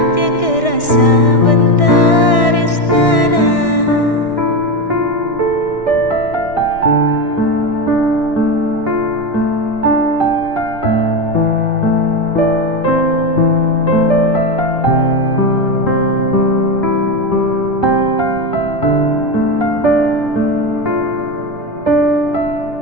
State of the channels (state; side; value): late; right; 1.6 ms